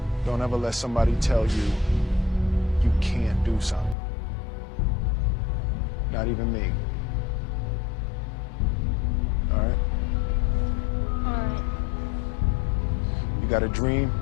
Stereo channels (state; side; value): drops out; right; at 4.0 s